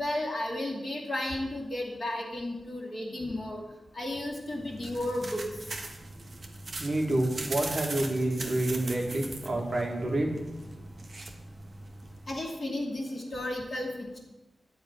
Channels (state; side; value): normal; both; correlation 0.93